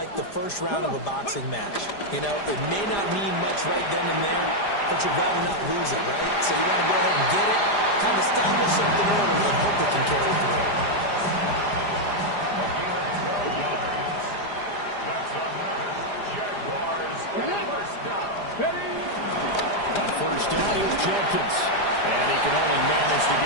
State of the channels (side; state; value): right; late; 4.9 ms